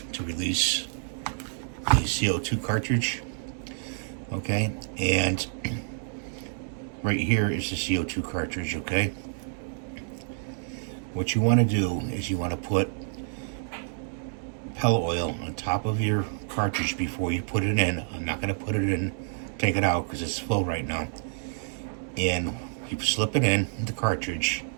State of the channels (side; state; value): left; silent; digital silence